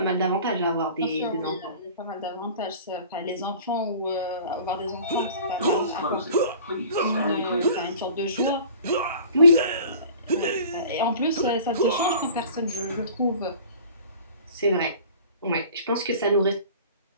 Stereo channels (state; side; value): inverted; both; correlation -0.45